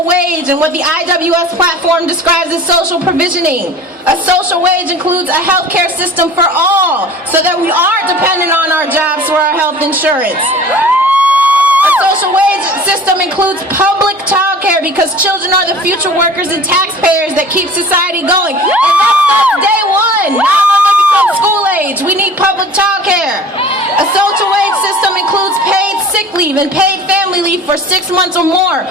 wage and what the IWS platform describes as social provisioning. A social wage includes a healthcare system for all so that we aren't dependent on our jobs for our health insurance. A social wage system includes public child care because children are the future workers and taxpayers that keep society going. And that's day one, not when they become school age. We need public child care. A social wage system includes paid sick leave and paid family leave for 6 months or more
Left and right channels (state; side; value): normal; both; correlation 0.43